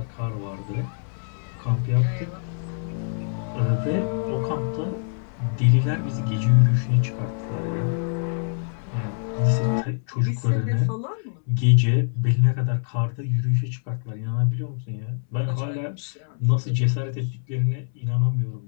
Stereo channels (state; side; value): silent; right; 62 dB below the other